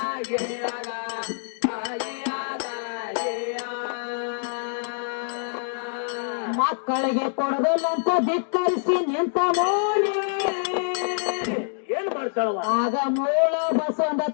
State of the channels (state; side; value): silent; right; digital silence